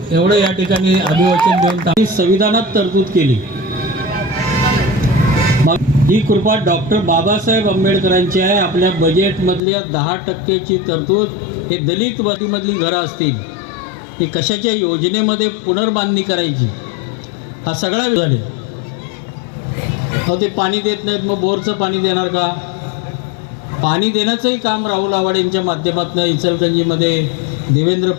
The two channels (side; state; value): right; drops out; at 9.6 s